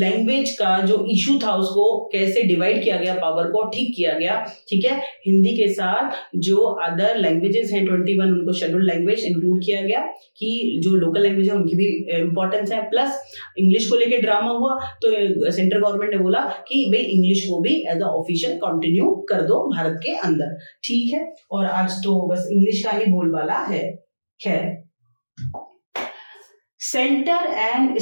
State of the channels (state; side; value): inverted; both; correlation -1.00